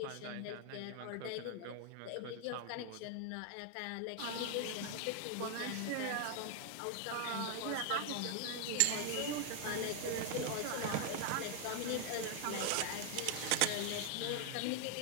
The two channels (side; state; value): both; different; correlation 0.00